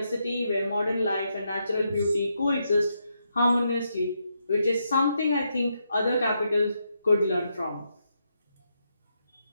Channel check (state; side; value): inverted; both; correlation -0.81